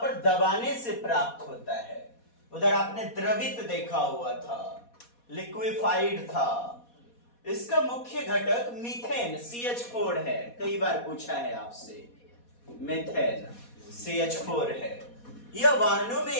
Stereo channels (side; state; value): right; late; 4.2 ms